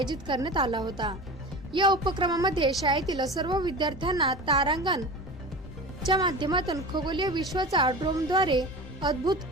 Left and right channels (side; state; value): both; normal; correlation 0.32